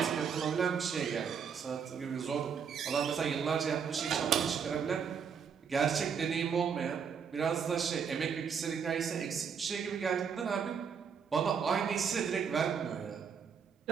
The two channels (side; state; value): left; quieter; 6.8 dB